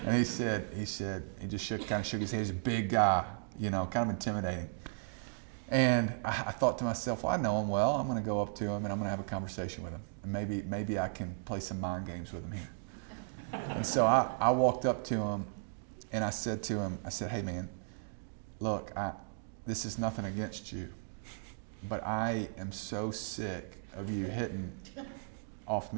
And he just kind of shook his head. He's a big guy, kind of intimidating. And I thought to myself, well, I know him well. I'm going to go up to him and I'm going to have a conversation with him. And maybe I can play some mind games with him here. And so I walked up to him and I said to him, "Hey man, look, this is nothing against you, but I am so sick of you hitting off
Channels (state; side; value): silent; left; digital silence